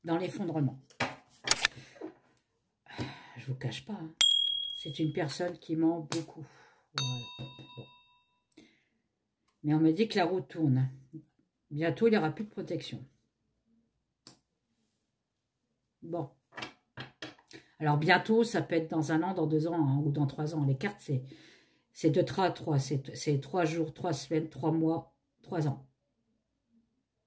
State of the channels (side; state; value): both; identical; correlation 1.00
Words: Dans l'effondrement. Je vous cache pas. Hein. C'est une personne qui ment beaucoup. Voilà. Bon. Mais on me dit que la roue tourne. Bientôt, il n'y aura plus de protection. Bon. Alors, bientôt, ça peut être dans 1 an, dans 2 ans hein, ou dans 3 ans. Les cartes, c'est de 3 à 3. C'est 3 jours, 3 semaines, 3 mois, 3 ans.